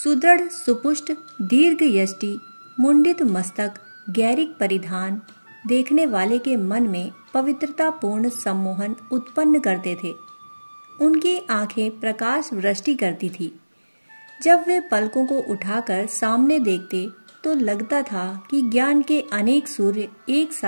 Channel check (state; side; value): inverted; both; correlation -1.00